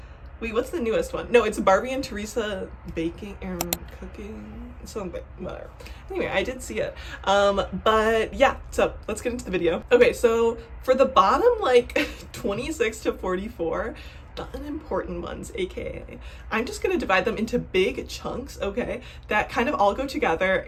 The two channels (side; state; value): both; identical; correlation 1.00